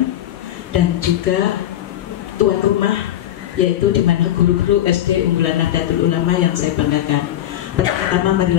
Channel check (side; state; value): right; quieter; 12.3 dB